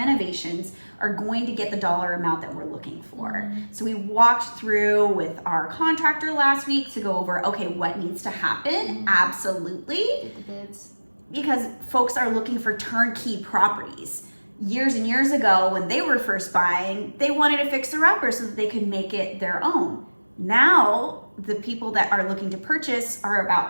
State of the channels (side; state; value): both; inverted; correlation -1.00